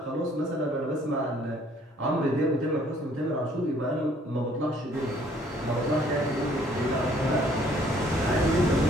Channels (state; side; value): normal; both; correlation 0.60